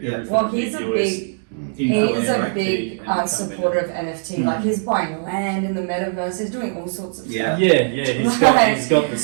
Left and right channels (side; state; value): left; silent; digital silence